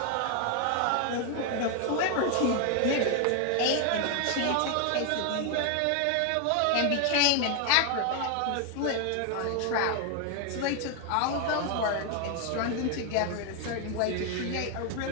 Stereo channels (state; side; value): different; both; correlation 0.01